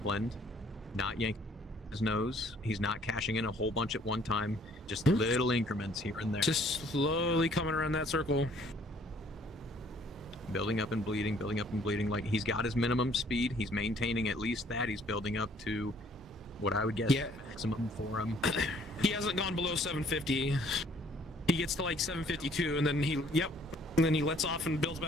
not yanking his nose. He's not cashing in a whole bunch at one time, just little increments here and there. Just slowly coming around that circle. Building up and bleeding, like, he's got his minimum speed. He's maintaining at least that. He's building up to what I would guess maximum for him. He hasn't gone below 750. He gets to like 752, and then he lets off and builds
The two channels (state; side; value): normal; both; correlation 0.60